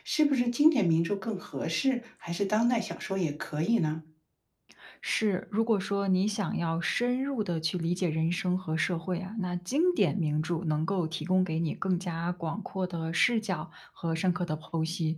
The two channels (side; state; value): both; identical; correlation 1.00